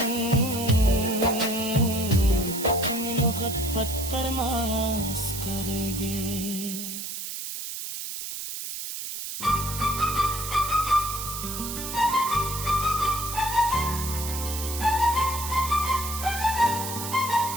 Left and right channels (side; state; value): right; noise; hiss, 6 dB below the sound